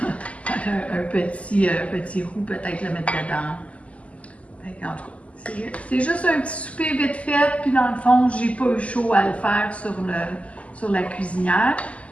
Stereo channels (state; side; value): late; right; 0.065 ms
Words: un petit roux, peut-être le mettre dedans. Fait que, en tout cas, c'est juste un petit souper vite fait. Puis dans le fond, j'ai pas eu chaud à le faire sur la cuisinière.